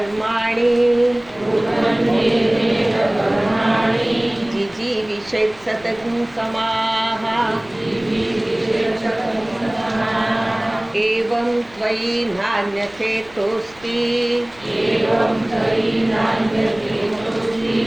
जिजीविषेत् सततं समाः। एवं त्वयि नान्यथेतोऽस्ति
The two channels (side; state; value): left; noise; rumble, 26 dB below the sound